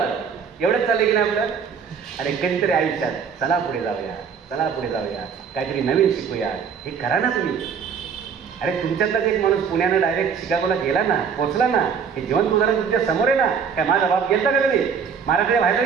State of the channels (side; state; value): left; quieter; 6.6 dB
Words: एवढंच चाललंय की नाही आपलं? अरे कधीतरी आयुष्यात चला पुढे जाऊया, चला पुढे जाऊया, काहीतरी नवीन शिकूया, हे करा ना तुम्ही. अरे तुमच्यातलाच एक माणूस पुण्यानं डायरेक्ट शिकागोला गेला ना, पोचला ना, हे जिवंत उदाहरण तुमच्या समोर आहे ना. काय माझा बाप गेलता का कधी? महाराष्ट्राच्या बाहेर